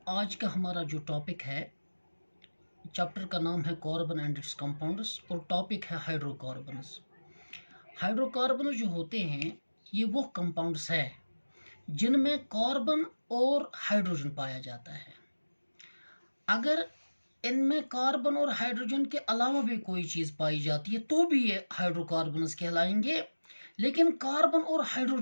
आज का हमारा जो टॉपिक है, चैप्टर का नाम है कार्बन एंड इट्स कंपाउंड्स और टॉपिक है हाइड्रोकार्बन्स। हाइड्रोकार्बन जो होते हैं ये वो कंपाउंड्स है जिनमें कार्बन और हाइड्रोजन पाया जाता है। अगर इनमें कार्बन और हाइड्रोजन के अलावा भी कोई चीज़ पाई जाती है तो भी ये हाइड्रोकार्बन्स कहलाएंगे, लेकिन कार्बन और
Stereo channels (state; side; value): inverted; both; correlation -1.00